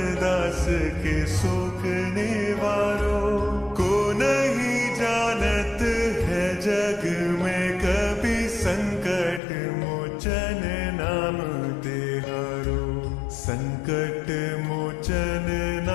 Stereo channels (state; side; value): drops out; right; at 9.4 s